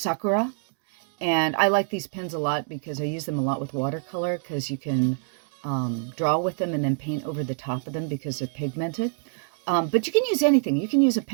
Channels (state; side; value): silent; left; 61 dB below the other